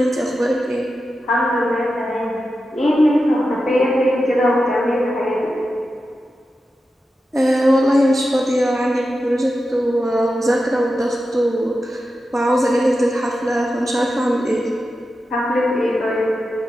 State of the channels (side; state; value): both; normal; correlation 0.91